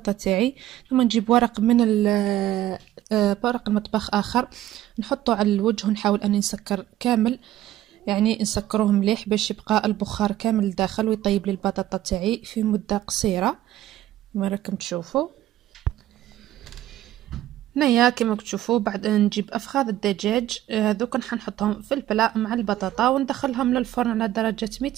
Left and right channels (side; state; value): left; quieter; 13.6 dB